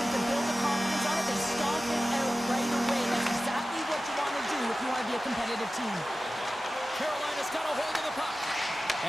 to build the confidence on it, they stomp it out right away. That's exactly what you want to do if you want to be a competitive team. Carolina's got a hold of the puck.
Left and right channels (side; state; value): both; normal; correlation 0.95